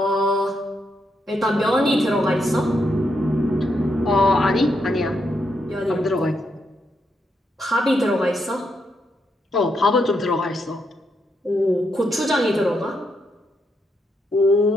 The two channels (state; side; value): normal; both; correlation 0.80